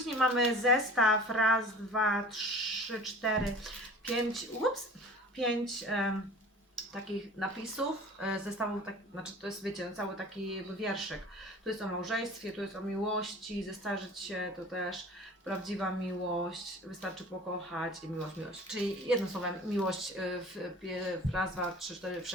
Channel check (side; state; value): both; normal; correlation 0.42